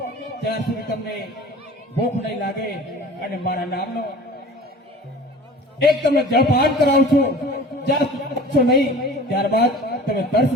ત્યાર સુધી તમને ભૂખ નહીં લાગે. અને મારા નામનો એક તમને જળપાન કરાવું છું, જ્યાં સુધી પહોંચો નહીં ત્યારબાદ તમે તરસ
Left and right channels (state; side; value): normal; both; correlation 0.42